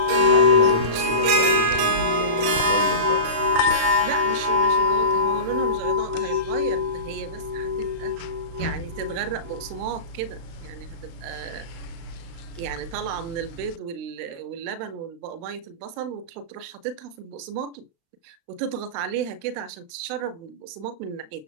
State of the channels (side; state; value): left; late; 35 ms